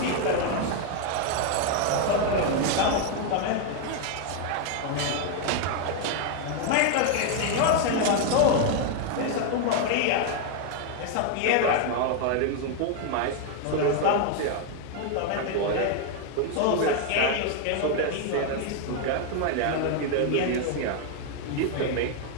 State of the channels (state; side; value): different; both; correlation 0.00